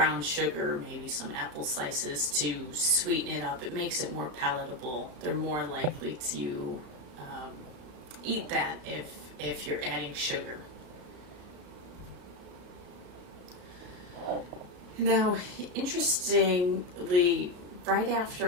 sugar, maybe some apple slices to sweeten it up. It makes it more palatable. They're more likely to eat that if you're adding sugar. Now, interestingly, right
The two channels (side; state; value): left; late; 33 ms